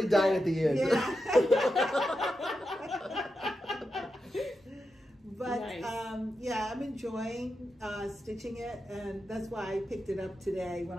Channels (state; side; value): normal; both; correlation 0.88